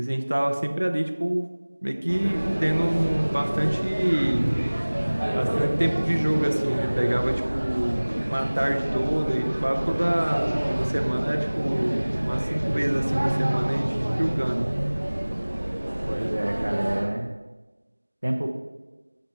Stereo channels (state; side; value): inverted; both; correlation -1.00